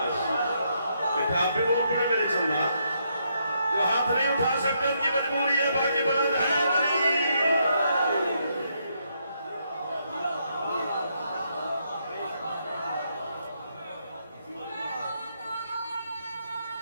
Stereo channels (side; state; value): both; inverted; correlation -0.76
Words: بیٹا آپ بھی بول پڑے میرے چندہ. جو ہاتھ نہیں اٹھا سکتے ان کی مجبوری ہے، باقی بلند ہے نہیں.